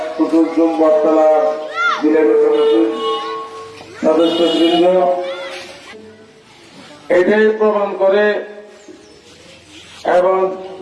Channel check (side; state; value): both; identical; correlation 1.00